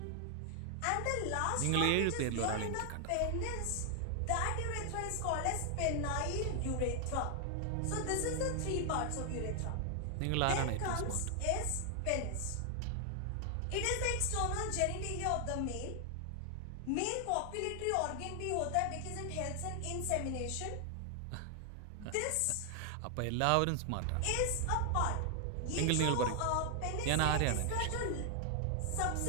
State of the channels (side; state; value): both; different; correlation 0.00